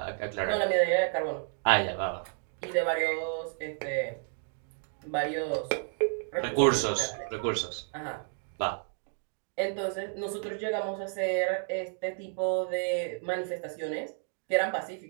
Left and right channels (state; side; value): silent; left; 57 dB below the other